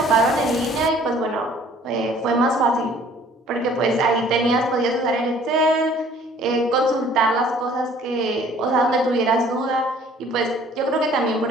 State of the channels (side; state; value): both; normal; correlation 0.55